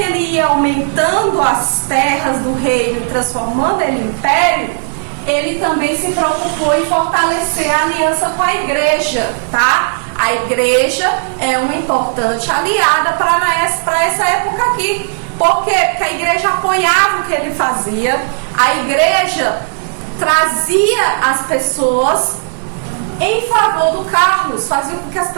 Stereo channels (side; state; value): left; silent; digital silence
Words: ia aumentando as terras do reino e transformando ele em império, ele também se preocupou em fortalecer a aliança com a igreja, tá? A igreja é uma importante aliada para essa época aqui. Por quê? Porque a igreja apoiava o que ele fazia, a igreja trazia as pessoas em favor do Carlos, fazia com que as